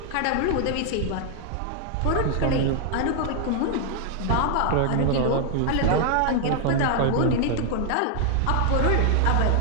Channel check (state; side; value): different; both; correlation 0.00